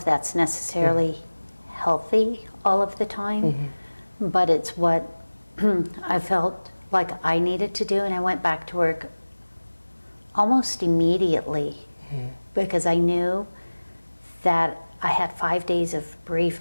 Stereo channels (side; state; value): both; inverted; correlation -1.00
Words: that's necessarily healthy all of the time, but it's what I felt like I needed to do, and I went back to work almost immediately because I knew that I had 5 days of